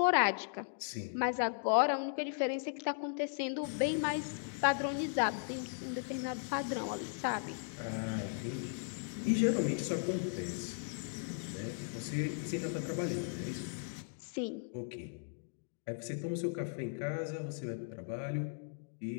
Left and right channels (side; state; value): right; silent; digital silence